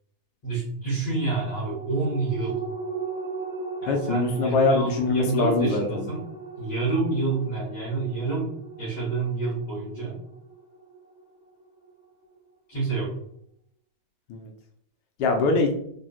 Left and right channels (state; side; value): late; right; 8.2 ms